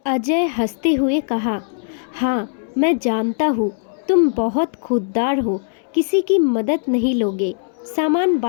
अजय हंसते हुए कहा, हाँ, मैं जानता हूँ, तुम बहुत खुददार हो, किसी की मदद नहीं लोगे। सामान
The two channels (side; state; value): right; silent; 66 dB below the other